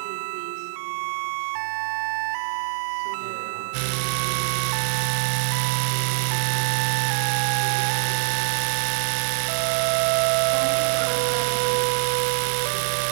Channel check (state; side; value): silent; left; 62 dB below the other